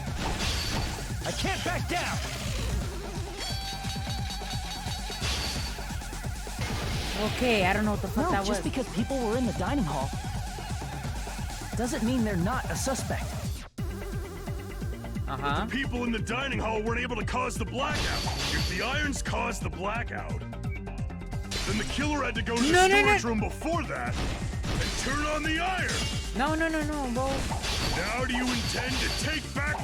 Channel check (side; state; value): both; identical; correlation 1.00